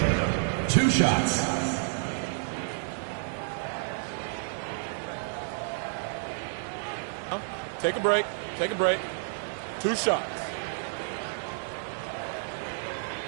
2 shots. Take a break. Take a break. 2 shots.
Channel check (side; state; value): left; silent; digital silence